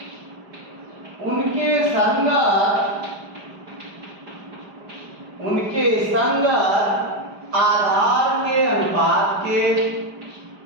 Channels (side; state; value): left; late; 4.9 ms